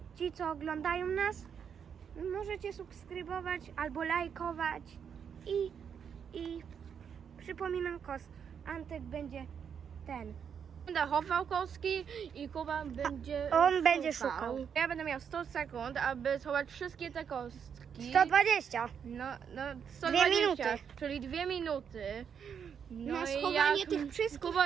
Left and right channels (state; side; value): quieter; left; 7.4 dB